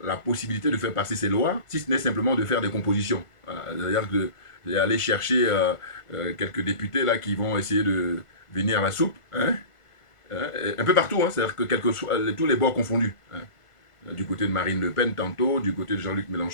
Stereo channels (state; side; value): late; right; 1.5 ms